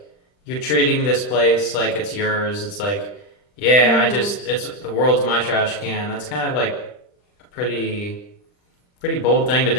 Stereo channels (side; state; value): right; late; 39 ms